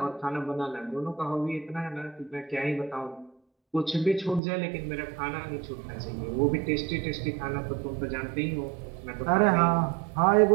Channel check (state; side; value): drops out; left; at 4.4 s